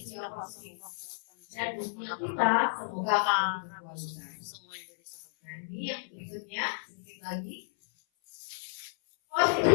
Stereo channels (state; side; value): silent; right; 55 dB below the other